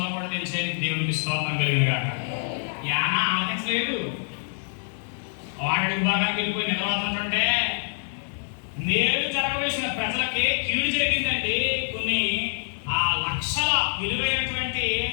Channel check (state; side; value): silent; right; digital silence